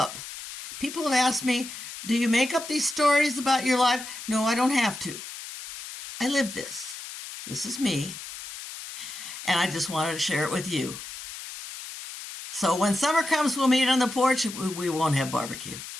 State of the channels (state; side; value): noise; left; hiss, 11 dB below the sound